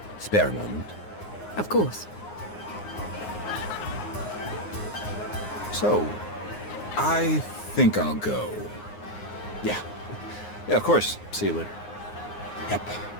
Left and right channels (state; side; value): late; right; 9.6 ms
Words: Spare a moment. Of course. So, I think I'll go. Yeah. Yeah, of course. See you later. Yep.